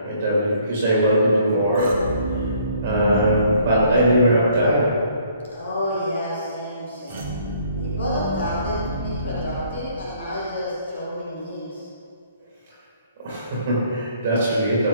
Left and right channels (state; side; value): inverted; both; correlation -0.62